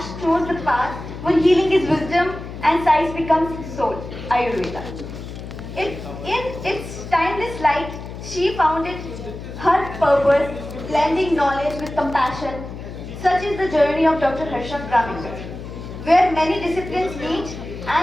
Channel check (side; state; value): left; noise; hum, 11 dB below the sound